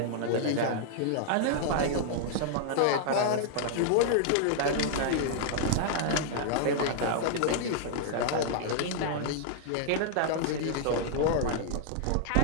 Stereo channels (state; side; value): different; both; correlation -0.01